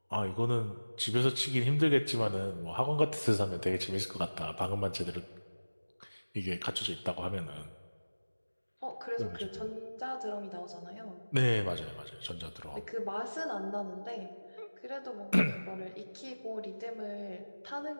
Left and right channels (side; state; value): both; inverted; correlation -1.00